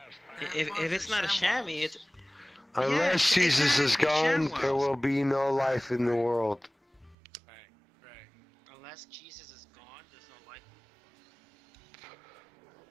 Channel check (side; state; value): left; drops out; at 7.2 s